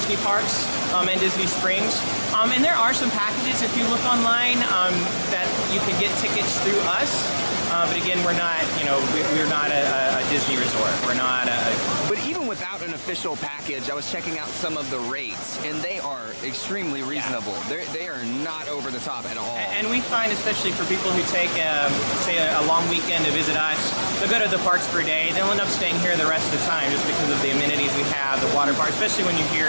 parks and Disney Springs. And there are some packages, if you look online, that you can get tickets through us. But again, we're not, you know, we're not a Disney resort. We're not a... But even without an official package, I was checking out some of the rates, and they are extremely reasonable. Yeah. They are not over the top at all. And we find, especially for people who take, say, a long weekend to visit us, they'll go to the parks for a day. They'll end up staying here the rest of the time just because of the amenities we have, the water park, especially when you're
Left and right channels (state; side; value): inverted; both; correlation -1.00